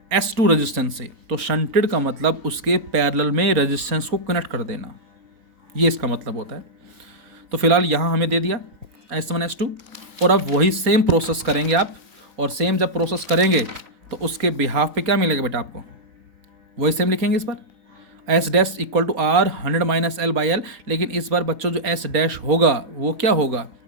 S2 रेजिस्टेंस से, तो शंटेड का मतलब उसके पैरेलल में रेजिस्टेंस को कनेक्ट कर देना, ये इसका मतलब होता है। तो फिलहाल यहाँ हमें दे दिया S1 S2, और अब वही सेम प्रोसेस करेंगे आप, और सेम जब प्रोसेस करेंगे तो उसके बिहाफ पे क्या मिलेगा बेटा आपको, वही सेम लिखेंगे इस बार S dash equal to R 100 minus L by L. लेकिन इस बार बच्चों जो एस डैश होगा वो क्या होगा,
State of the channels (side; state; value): left; late; 3.9 ms